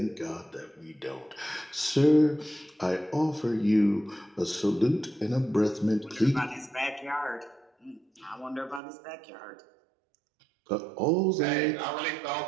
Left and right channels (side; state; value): left; drops out; at 8.8 s